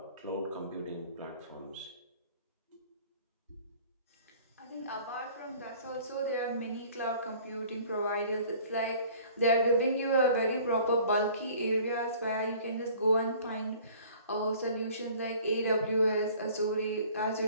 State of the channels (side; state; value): both; inverted; correlation -0.50